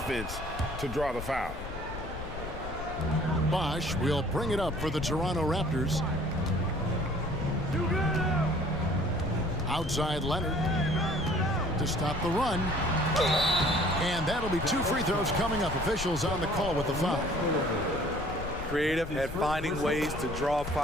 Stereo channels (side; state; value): left; noise; rumble, 9 dB below the sound